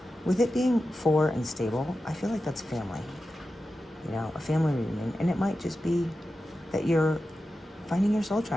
with it being four and stable, I feel like that's family. You know, a family reunion. And it might just be that you're finding your soul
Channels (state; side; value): normal; both; correlation 0.92